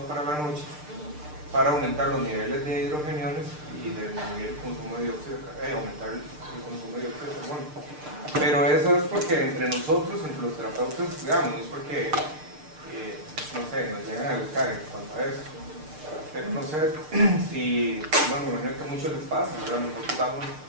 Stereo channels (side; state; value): left; late; 6.6 ms